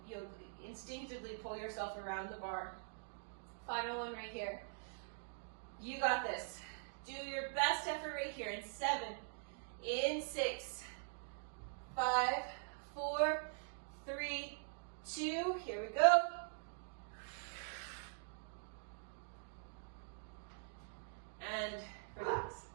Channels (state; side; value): silent; left; digital silence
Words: instinctively pull yourself around the bar. Final one right here. You got this. Do your best effort right here in 7, in 6, 5, 4, 3, 2, here we go. And relax.